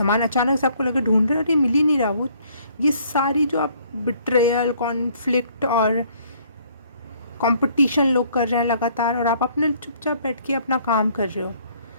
अचानक से आपको लगे ढूंढ रहे, अरे मिल ही नहीं रहा वो, ये सारी जो आप बिट्रेयल, कॉन्फ्लिक्ट और कंपटीशन लोग कर रहे हैं लगातार, और आप अपने चुपचाप बैठ के अपना काम कर रहे हो,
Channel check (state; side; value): inverted; both; correlation -0.62